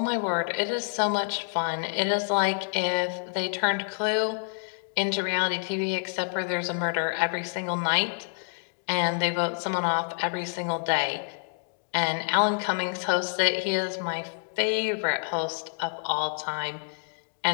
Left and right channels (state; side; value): silent; right; 60 dB below the other